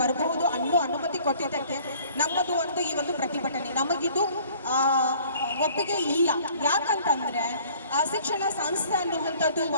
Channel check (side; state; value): both; inverted; correlation -0.54